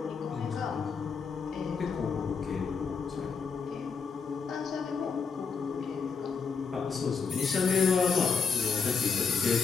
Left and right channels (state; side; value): quieter; right; 5.5 dB